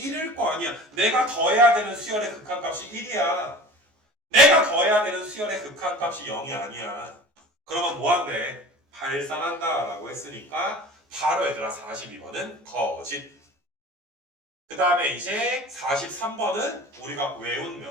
거 아니야. 내가 더해야 되는 수열의 극한값이 1이야. 내가 더해야 되는 수열의 극한값이 0이 아니야. 그러면 뭐한대? 발산한다 라고 했으니까 바로 얘들아 42번은 거짓. 그 다음에 이제 43번은 우리가 외운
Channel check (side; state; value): left; late; 14 ms